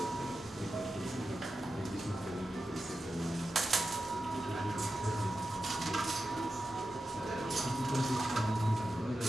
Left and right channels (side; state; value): both; normal; correlation 0.91